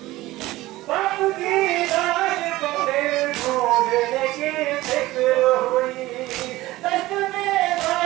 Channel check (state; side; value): quieter; left; 17.8 dB